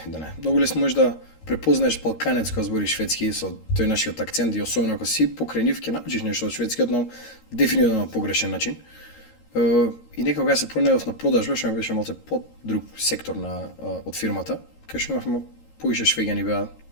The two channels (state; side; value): late; right; 13 ms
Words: многу лесно можеш да препознаеш балканец кој збори шведски со тој нашиот акцент и особено ако си покрај нив ќе научиш нешто од шведскиот на дефинитивно на погрешен начин. И некако кога се пронедов на продажба, што беше малце под друг сектор од фирмата, кај што имавме повише